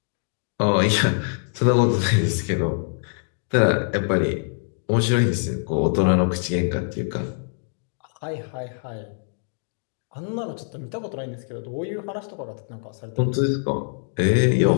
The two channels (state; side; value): silent; right; 63 dB below the other